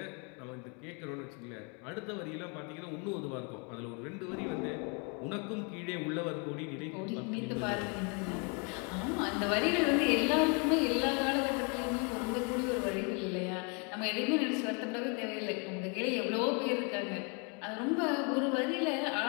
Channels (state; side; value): quieter; right; 34.5 dB